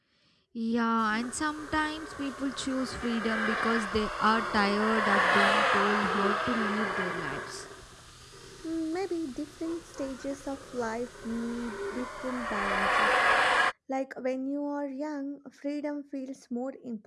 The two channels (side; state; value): both; identical; correlation 1.00